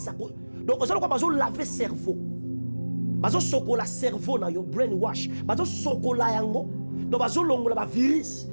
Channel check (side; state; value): both; inverted; correlation -1.00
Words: Donc, vous allez laver le cerveau. Vous allez le cerveau, vous brainwash. Vous allez donc vous allez le virus.